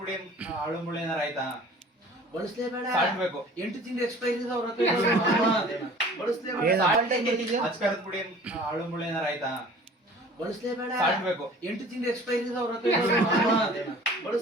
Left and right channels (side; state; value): both; normal; correlation 0.46